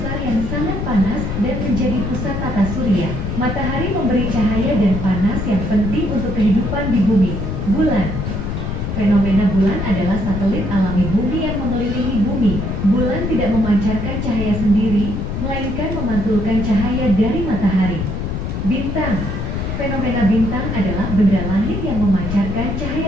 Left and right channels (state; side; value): noise; left; rumble, 3 dB below the sound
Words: yang sangat panas dan menjadi pusat tata surya. Matahari memberi cahaya dan panas yang penting untuk kehidupan di bumi. Bulan. Fenomena bulan adalah satelit alami bumi yang mengelilingi bumi. Bulan tidak memancarkan cahaya sendiri, melainkan memantulkan cahaya dari matahari. Bintang. Fenomena bintang adalah benda langit yang memancarkan